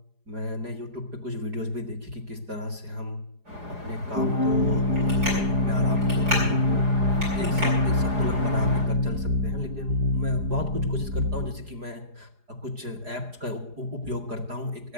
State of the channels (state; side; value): late; left; 4.9 ms